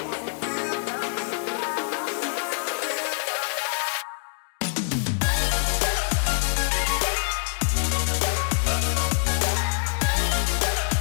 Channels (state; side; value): silent; right; digital silence